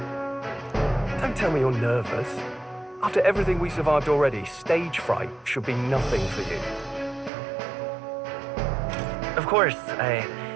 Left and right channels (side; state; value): left; drops out; at 7.3 s